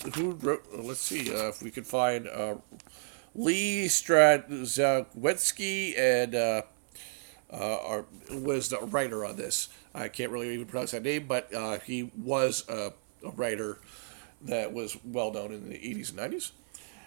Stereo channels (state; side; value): silent; left; 57 dB below the other